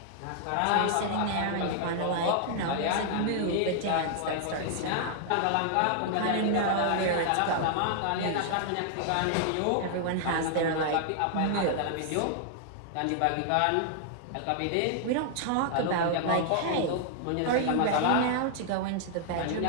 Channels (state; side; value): different; both; correlation 0.00